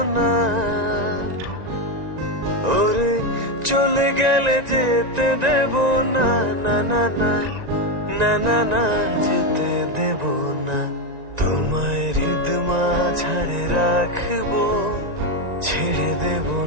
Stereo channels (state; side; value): late; left; 1.9 ms